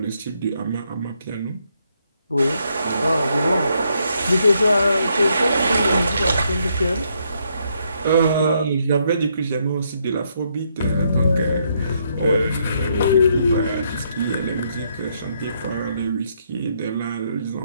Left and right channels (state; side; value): inverted; both; correlation -0.75